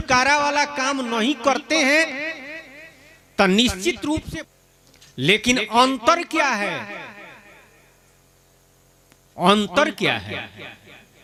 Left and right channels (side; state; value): both; identical; correlation 1.00